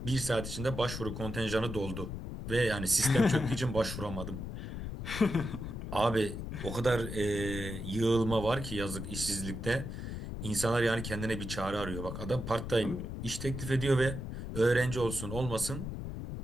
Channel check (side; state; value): left; noise; rumble, 6 dB below the sound